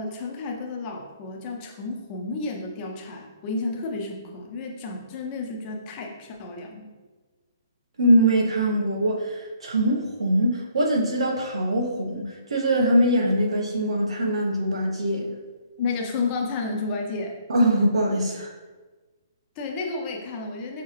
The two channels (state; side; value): inverted; both; correlation -0.67